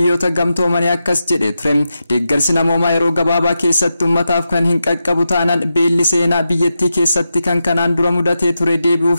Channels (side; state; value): both; inverted; correlation -0.89